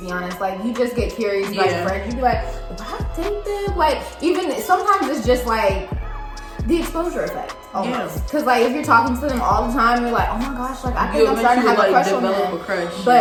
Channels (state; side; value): identical; both; correlation 1.00